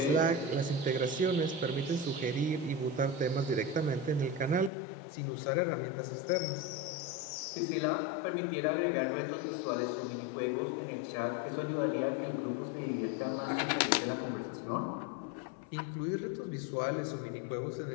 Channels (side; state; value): right; drops out; at 4.7 s